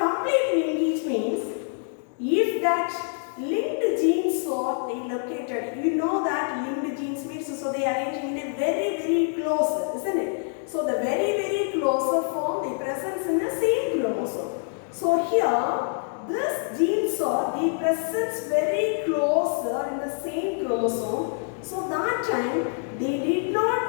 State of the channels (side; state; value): right; silent; 56 dB below the other